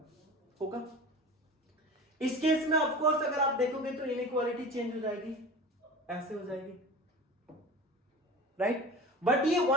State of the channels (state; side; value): normal; both; correlation 0.34